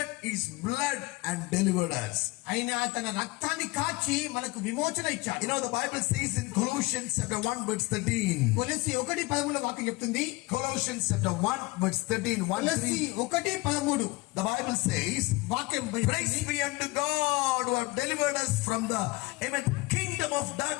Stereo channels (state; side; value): quieter; right; 22.9 dB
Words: his blood and delivered us. ఆయన తన రక్తాన్ని కాచి మనకు విమోచన ఇచ్చాడు. The Bible says in Colossians chapter 1 verse 13. కొలస్సీ 1:13 వాక్యం చెప్తుంది. Colossians chapter 1 verse 13. కొలస్సీ 1:13. The Bible says, వాక్యం praise be unto God who have delivered us from the kingdom of